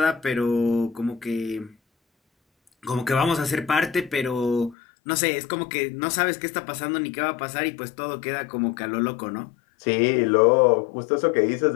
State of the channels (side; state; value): right; drops out; at 4.8 s